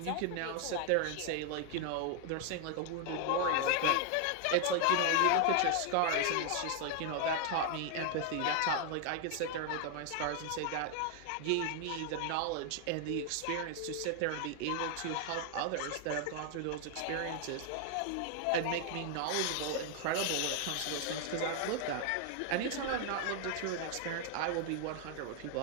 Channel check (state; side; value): different; both; correlation 0.00